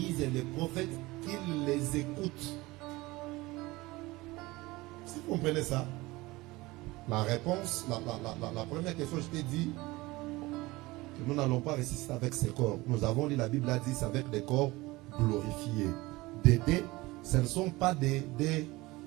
et les prophètes, qu'ils les écoutent. Si vous comprenez ça, la réponse, la première question, je t'ai dit que nous n'allons pas ressusciter avec ces corps. Nous avons lu, la Bible a dit, c'est avec des corps glorifiés. Ce ne sont pas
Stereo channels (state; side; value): quieter; left; 20.9 dB